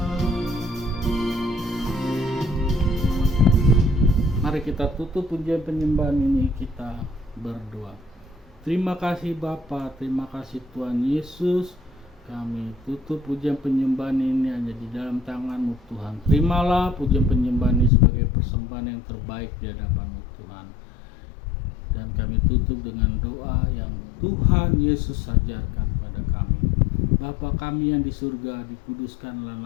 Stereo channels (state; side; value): drops out; right; at 17.9 s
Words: Mari kita tutup pujian penyembahan ini, kita berdoa. Terima kasih Bapa, terima kasih Tuhan Yesus. Kami tutup pujian penyembahan ini hanya di dalam tangan-Mu Tuhan. Terimalah pujian penyembahan ini sebagai persembahan yang terbaik di hadapan-Mu Tuhan. Dan kami tutup dengan doa yang Tuhan Yesus ajarkan pada kami. Bapa kami yang di surga, dikuduskanlah